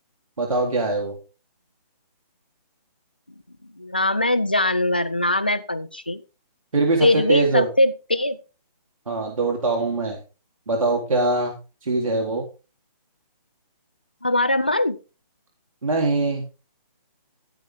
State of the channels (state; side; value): inverted; both; correlation -0.57